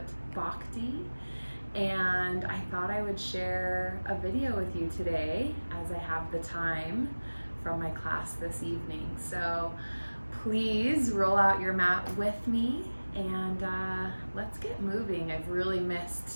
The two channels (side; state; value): both; inverted; correlation -1.00